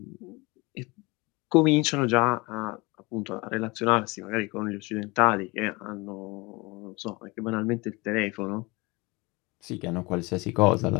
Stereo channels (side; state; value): right; quieter; 25.1 dB